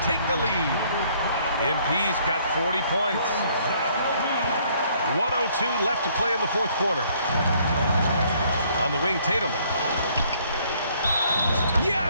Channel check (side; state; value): both; inverted; correlation -0.64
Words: take the lead. MP's got 40 points. 1:02 left to play in the fourth quarter. On the wing, Tatum.